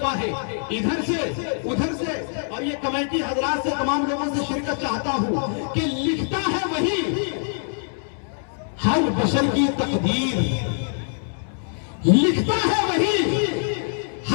ہے ادھر سے ادھر سے، اور یہ کمیٹی حضرات سے تمام لوگوں سے شرکت چاہتا ہوں کہ لکھتا ہے وہی ہر بشر کی تقدیر، لکھتا ہے وہی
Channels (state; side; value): silent; right; 63 dB below the other